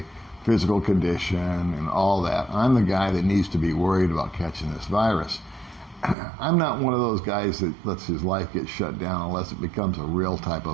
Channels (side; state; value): left; drops out; at 6.2 s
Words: physical condition and all that. I'm the guy that needs to be worried about catching this virus. I'm not one of those guys that lets his life get shut down unless it becomes a real type